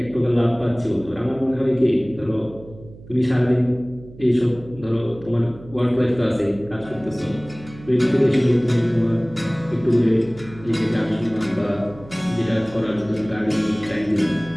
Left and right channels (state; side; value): noise; right; hum, 19 dB below the sound